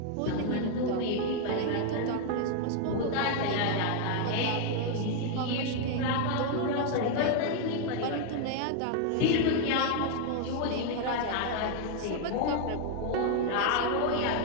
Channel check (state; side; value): different; both; correlation 0.00